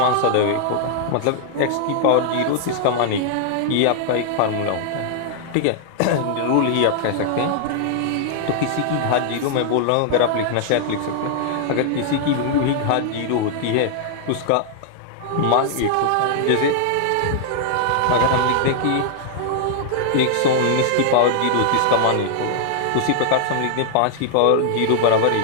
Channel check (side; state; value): both; different; correlation -0.01